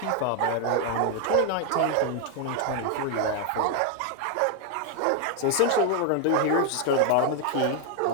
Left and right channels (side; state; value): both; different; correlation 0.00